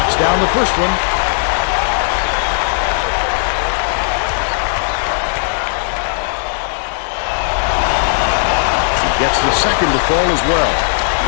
down the first one. Gets the second to fall as well.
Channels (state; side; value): silent; right; digital silence